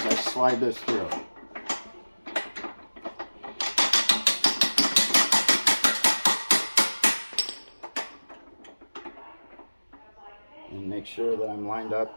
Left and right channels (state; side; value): inverted; both; correlation -1.00